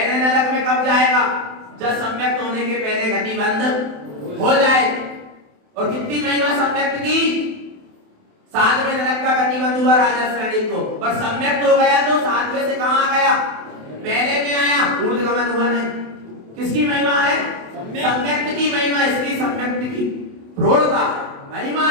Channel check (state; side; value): late; left; 27 ms